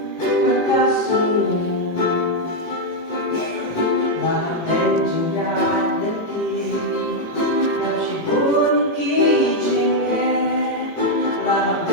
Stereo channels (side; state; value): right; late; 18 ms